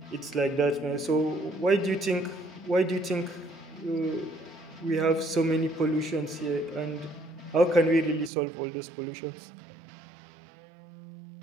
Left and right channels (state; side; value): drops out; left; at 8.3 s